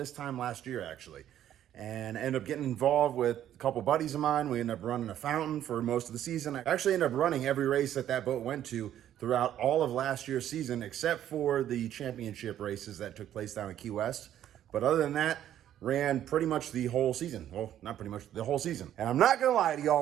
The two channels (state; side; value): quieter; left; 11.3 dB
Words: time last year, actually. And I ended up getting involved with a couple buddies of mine. We ended up running a fountain for most of the season. I actually ended up running every race that boat went to throughout all of last year's season, except for the championship races that took place down in Key West. But other than that, ran pretty much the whole season. Well, not pretty much, the whole season. And I'm not gonna lie to